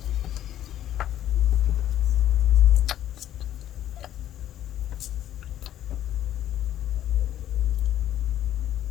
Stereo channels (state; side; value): quieter; right; 11.9 dB